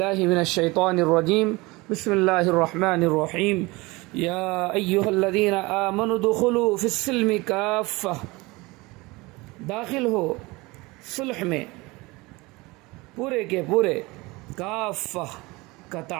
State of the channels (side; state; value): left; quieter; 23.1 dB